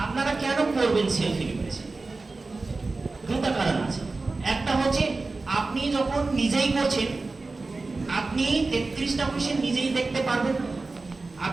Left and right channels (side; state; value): left; quieter; 3.6 dB